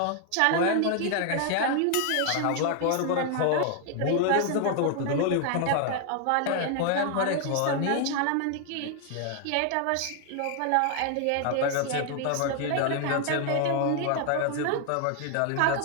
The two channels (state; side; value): different; both; correlation 0.00